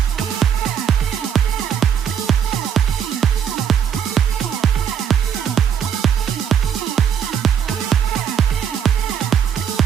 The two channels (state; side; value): quieter; left; 8.2 dB